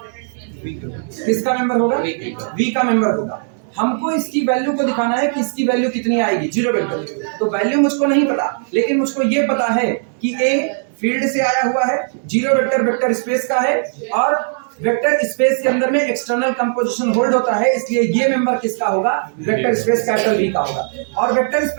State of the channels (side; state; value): left; silent; digital silence